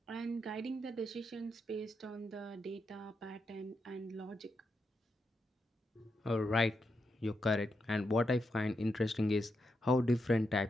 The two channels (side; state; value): both; normal; correlation 0.84